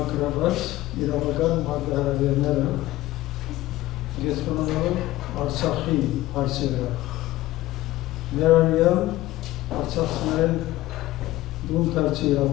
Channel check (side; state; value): right; quieter; 16.6 dB